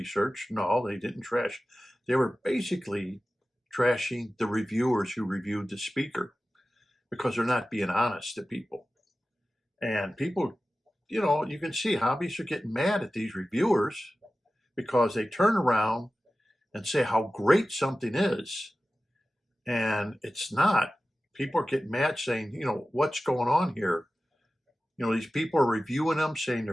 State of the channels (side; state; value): both; normal; correlation 0.95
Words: No, they didn't trash. They were basically trashing the reviewers who reviewed the speaker, because they're not being honest to people. And people, you can see hobbyists are getting mad at these reviewers because they turn around and say how great something is, and it's not. People are getting mad saying, what's going on here? These people are reviewing them, saying they're